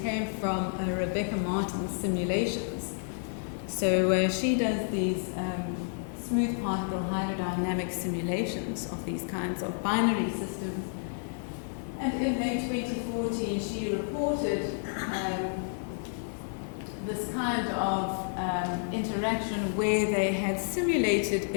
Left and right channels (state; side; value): silent; right; 57 dB below the other